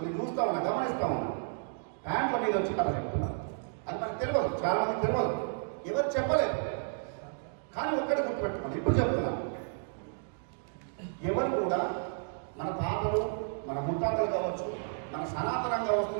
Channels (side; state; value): left; silent; digital silence